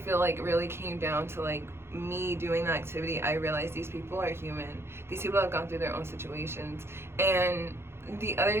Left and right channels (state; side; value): late; left; 0.12 ms